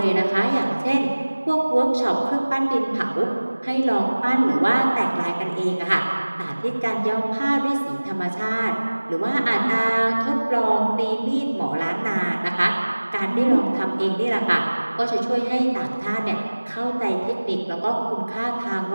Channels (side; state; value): both; inverted; correlation -1.00